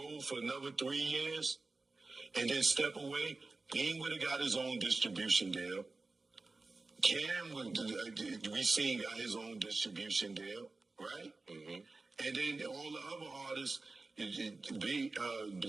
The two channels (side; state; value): left; quieter; 3.5 dB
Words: for another 3 years and then step away, Dame would have got his own distribution deal. Cam we seen got his own distribution deal, right? Mm-hmm. And then all the other artists,